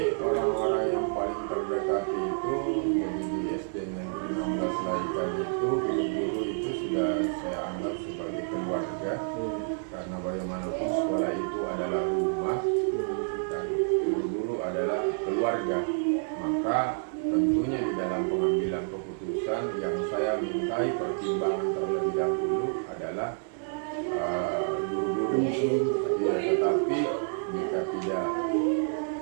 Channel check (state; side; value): silent; left; digital silence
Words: orang-orang yang paling terdekat itu jadi di SD Negeri 16 Laikan itu guru-guru itu sudah saya anggap sebagai keluarga, karena bagaimanapun sekolah itu adalah rumah dan guru-guru adalah keluarga. Maka tentunya di dalam pengambilan keputusan yang saya mintai pertimbangan terlebih dahulu adalah guru-guru. Ya, tetapi jika tidak